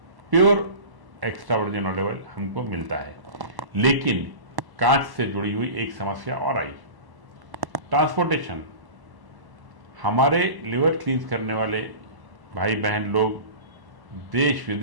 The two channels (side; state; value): left; late; 1.1 ms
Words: pure extra virgin olive oil हमको मिलता है। लेकिन कांच से जुड़ी हुई एक समस्या और आई, ट्रांसपोर्टेशन। हमारे लिवर क्लींस करने वाले भाई बहन लोग देश